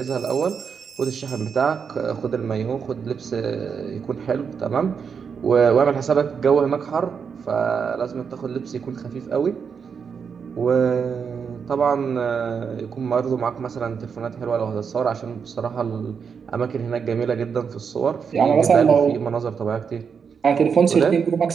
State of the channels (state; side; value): quieter; left; 6.4 dB